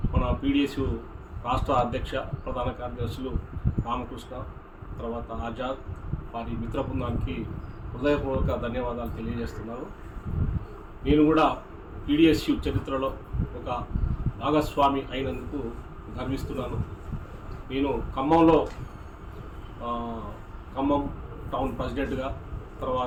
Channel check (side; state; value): both; identical; correlation 1.00